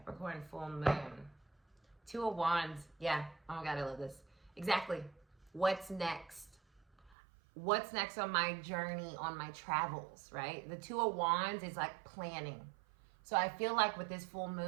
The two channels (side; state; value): left; drops out; at 7.2 s